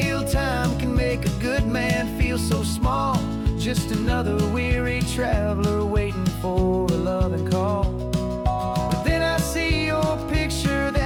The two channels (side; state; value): both; identical; correlation 1.00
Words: time can make a good man feel so small, just another weary traveler waiting for a loving call. But then I see your picture